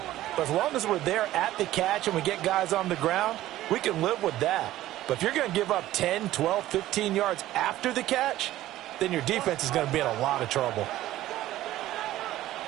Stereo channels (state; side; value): quieter; left; 14.8 dB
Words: But as long as we're there at the catch and we get guys on the ground, we can live with that. But if you're going to give up 10, 12, 15 yards after the catch, then your defense is going to be in a lot of trouble.